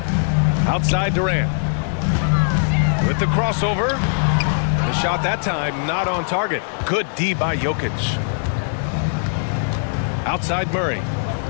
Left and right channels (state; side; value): silent; right; digital silence